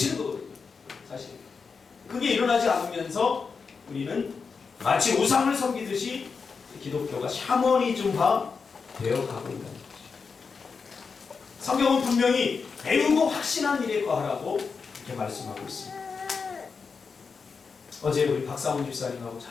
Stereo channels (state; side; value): quieter; right; 5.2 dB